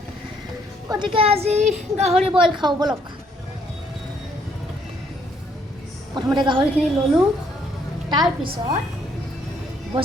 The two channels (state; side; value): normal; both; correlation 0.68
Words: গতিকে আজি গাহৰি বইল খাওঁ ব'লক। প্ৰথমতে গাহৰিখিনি ল'লোঁ, তাৰপিছত